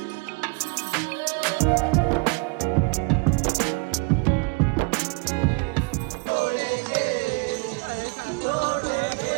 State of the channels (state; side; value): quieter; left; 30.1 dB